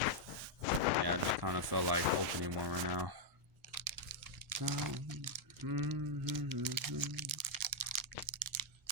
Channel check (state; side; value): normal; both; correlation -0.02